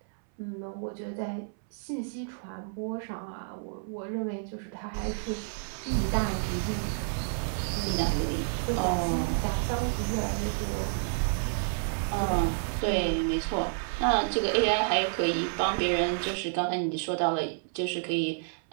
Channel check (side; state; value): left; silent; 58 dB below the other